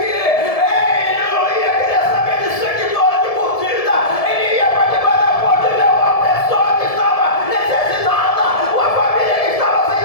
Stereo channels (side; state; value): right; late; 1.7 ms